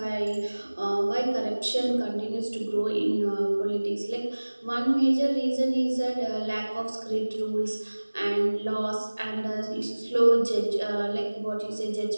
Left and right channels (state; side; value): inverted; both; correlation -1.00